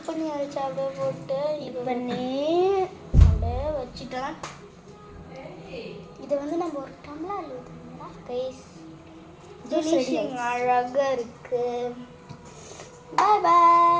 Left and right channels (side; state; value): both; identical; correlation 1.00